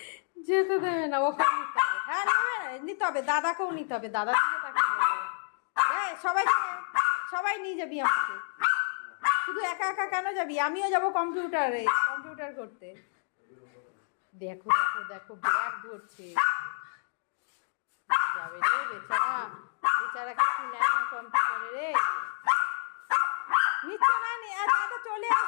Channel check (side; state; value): right; silent; 58 dB below the other